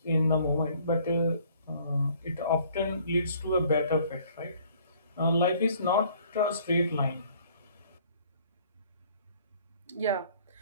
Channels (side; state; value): both; inverted; correlation -0.58